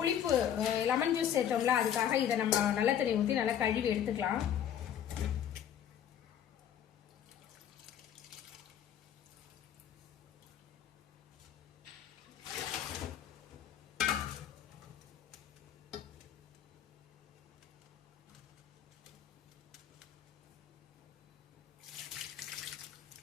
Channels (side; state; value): right; quieter; 9.7 dB